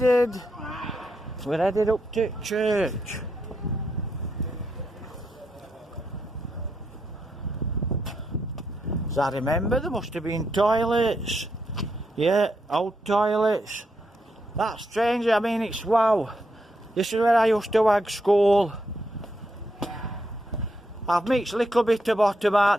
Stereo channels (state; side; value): normal; both; correlation 0.81